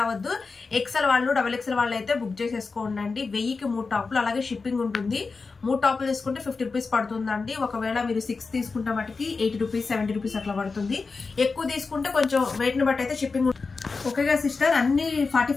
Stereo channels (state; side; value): quieter; right; 4.4 dB